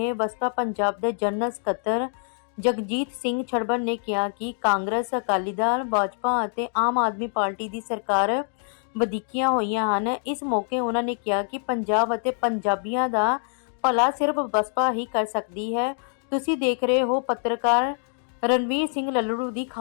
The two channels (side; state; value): right; silent; 59 dB below the other